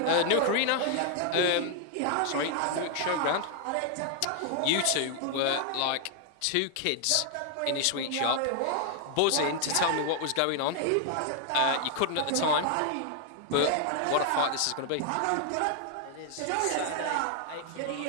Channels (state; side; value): different; both; correlation 0.00